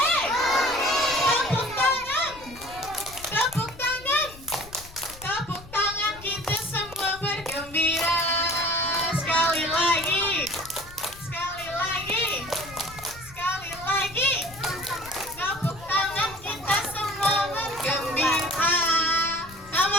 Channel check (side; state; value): left; noise; rumble, 19 dB below the sound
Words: Tepuk tangan. Tepuk tangan. Tepuk tangan kita semua bergembira. Sekali lagi. Sekali lagi. Sekali lagi. Tepuk tangan kita semua bergembira.